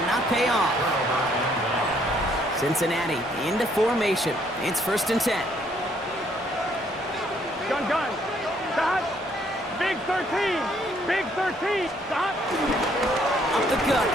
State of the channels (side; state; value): both; normal; correlation 0.67